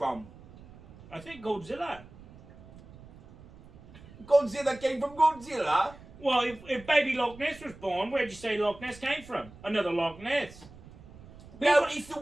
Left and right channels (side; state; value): right; noise; rumble, 20 dB below the sound